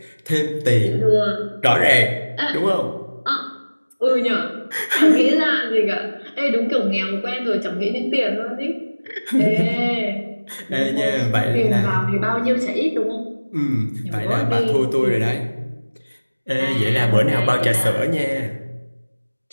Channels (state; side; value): inverted; both; correlation -1.00